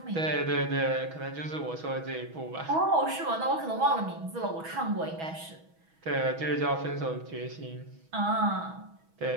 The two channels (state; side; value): late; left; 6.2 ms